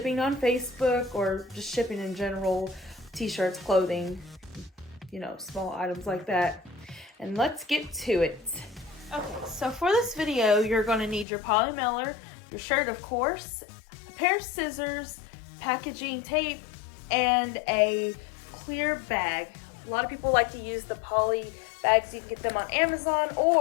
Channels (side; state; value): right; drops out; at 11.2 s